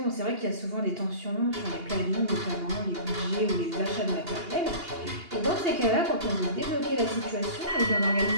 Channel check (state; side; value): late; left; 2.8 ms